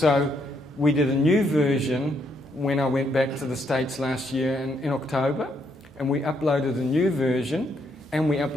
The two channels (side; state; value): both; normal; correlation 0.74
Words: we did a new version when I went back to the States last year in October, and we uploaded a new version, and we